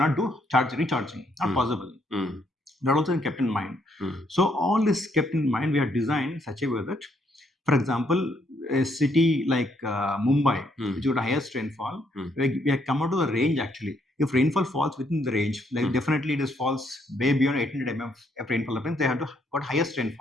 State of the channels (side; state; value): both; normal; correlation 0.72